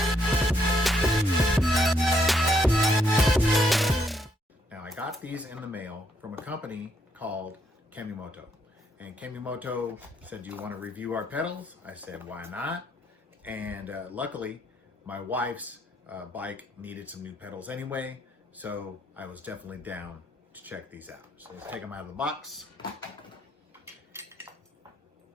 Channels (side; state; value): both; normal; correlation 0.73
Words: Now I got these in the mail from a company called Kemimoto. And Kemimoto said, "Do you want to review our pedals?" I said, "Why not?" And luckily my wife's bike needed some new pedals anyway, so I was definitely down to check these out. So let's take them out of the box.